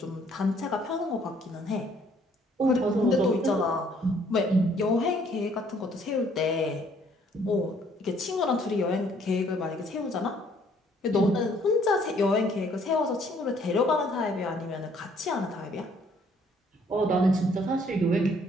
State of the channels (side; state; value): both; normal; correlation 0.63